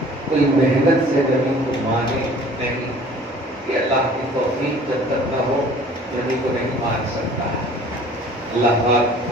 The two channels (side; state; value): both; normal; correlation 0.50